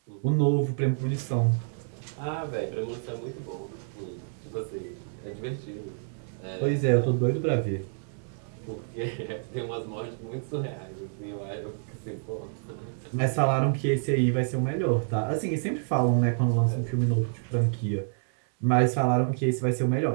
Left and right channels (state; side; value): silent; left; digital silence